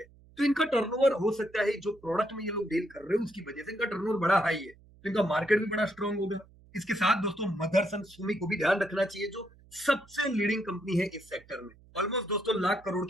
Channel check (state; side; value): noise; right; hum, 26 dB below the sound